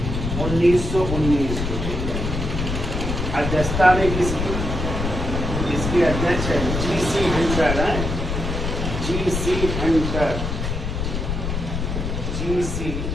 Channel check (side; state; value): left; noise; rumble, 3 dB below the sound